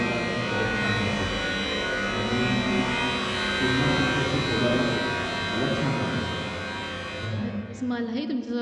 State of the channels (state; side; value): identical; both; correlation 1.00